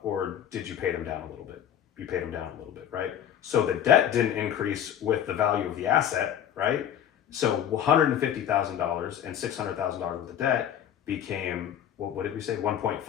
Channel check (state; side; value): quieter; right; 9.9 dB